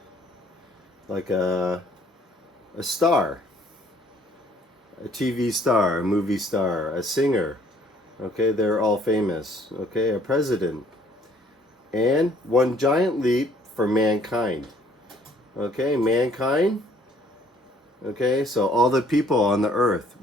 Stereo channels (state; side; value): normal; both; correlation 0.60